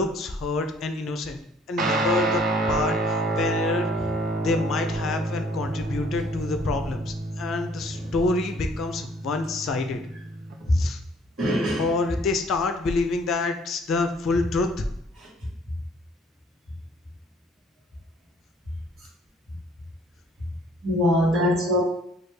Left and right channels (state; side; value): normal; both; correlation 0.59